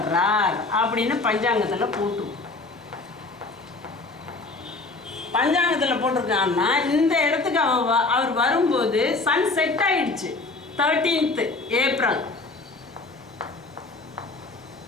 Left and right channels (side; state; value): right; quieter; 3.5 dB